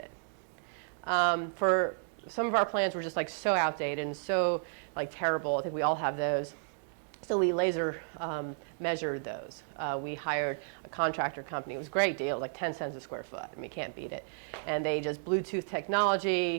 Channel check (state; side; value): silent; left; digital silence